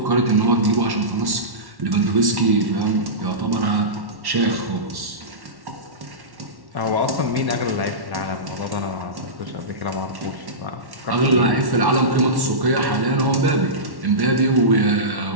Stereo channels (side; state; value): left; late; 1.1 ms